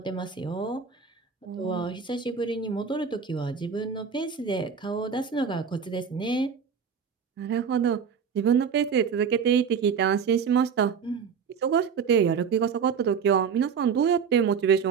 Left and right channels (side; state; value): left; quieter; 6.6 dB